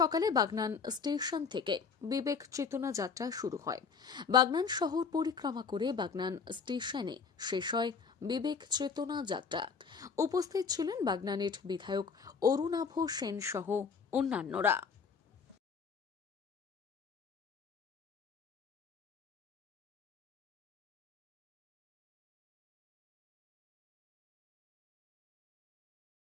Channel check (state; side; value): quieter; right; 5.6 dB